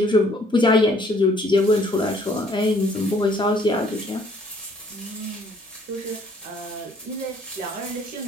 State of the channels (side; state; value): both; normal; correlation 0.61